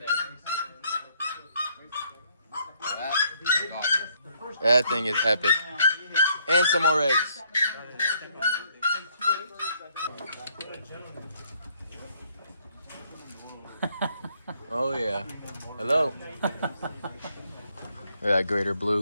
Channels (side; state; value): both; inverted; correlation -0.68